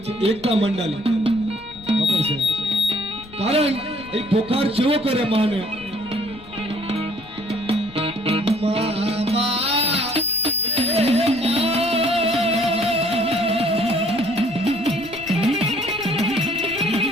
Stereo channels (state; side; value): noise; left; rumble, 20 dB below the sound